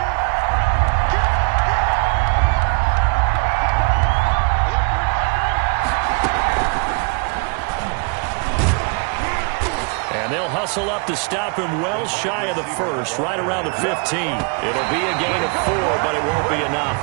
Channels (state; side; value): quieter; left; 36.1 dB